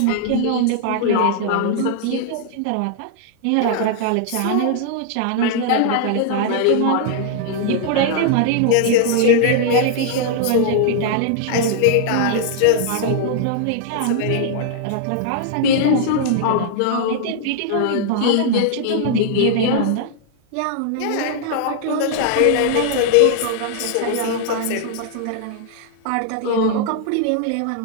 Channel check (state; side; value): different; both; correlation -0.01